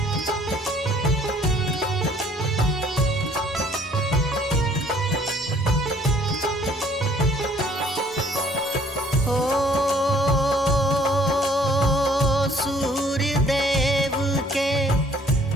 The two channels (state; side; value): normal; both; correlation 0.59